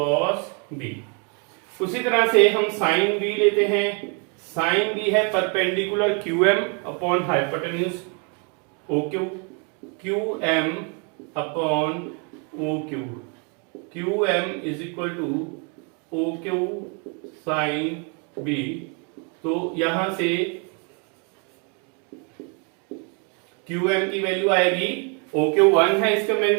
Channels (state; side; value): quieter; left; 36.5 dB